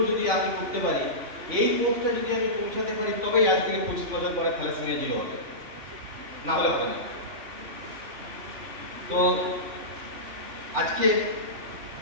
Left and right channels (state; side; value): late; left; 3.5 ms